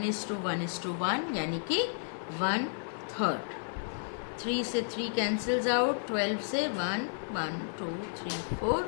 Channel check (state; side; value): silent; right; 55 dB below the other